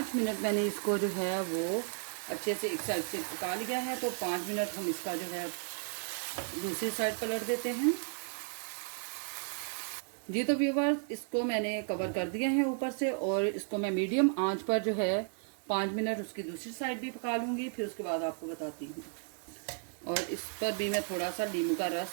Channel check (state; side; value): silent; left; 55 dB below the other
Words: मिनट मैंने इसको जो है वो अच्छे से एक साइड से पका लिया है। तो 5 मिनट हम इसका जो है दूसरी साइड पलट देते हैं। जी तो व्यूअर्स, इसको मैंने कवर कर दिया है ऊपर से, और इसको मैं मीडियम आंच पर जो है 5 मिनट उसकी दूसरी साइड भी पका लूँगी, फिर उसके बाद आपको बताती हूँ। और इस पर भी मैं थोड़ा सा नींबू का